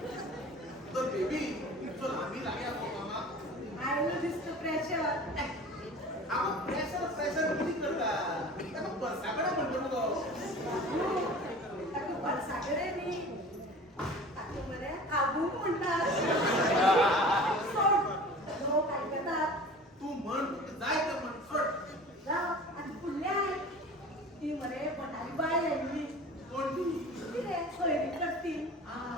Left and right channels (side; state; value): both; normal; correlation 0.40